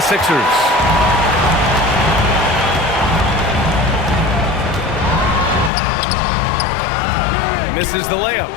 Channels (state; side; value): drops out; right; at 5.7 s